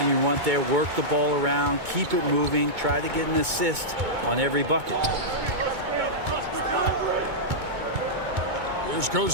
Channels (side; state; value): left; late; 2.2 ms